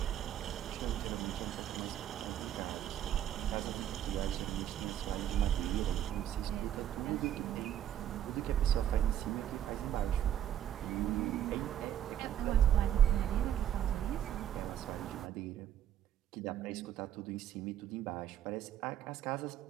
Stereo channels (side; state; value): left; quieter; 10.6 dB